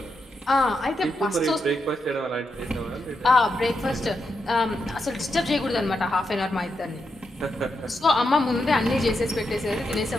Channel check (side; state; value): both; normal; correlation 0.84